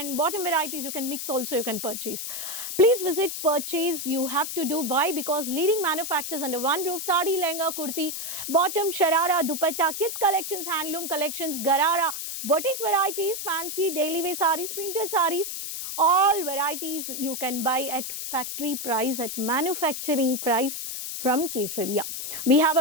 bottom varieties you can mix also, you can purchase. Please visit, purchase, you have to do. Why? Because leading manufacturers under one roof, sari, lehenga, kurti, bottom, sharara, dupatta, kids collections, handloom collections, garara, boutique varieties, fancy, daily wear sarees, printed sarees, all varieties you can buy at factory price, at manufacturing price from Kesaria. We have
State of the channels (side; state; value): left; noise; hiss, 5 dB below the sound